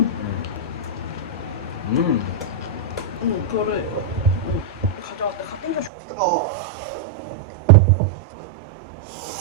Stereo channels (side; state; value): left; drops out; at 5.9 s